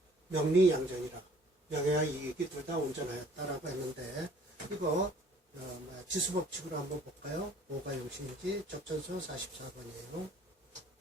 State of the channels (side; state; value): both; normal; correlation 0.56